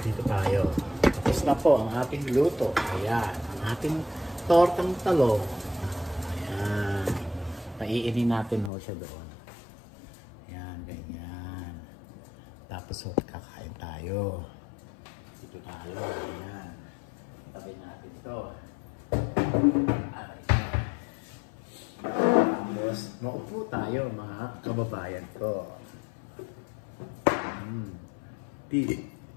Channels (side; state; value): right; drops out; at 8.7 s